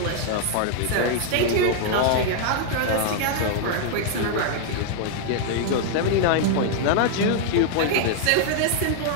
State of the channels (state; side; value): different; both; correlation 0.00